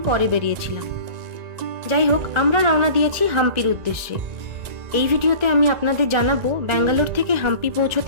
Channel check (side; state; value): left; late; 1.4 ms